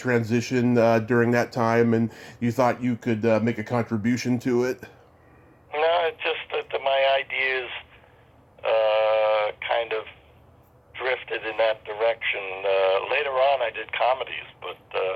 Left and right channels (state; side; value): identical; both; correlation 1.00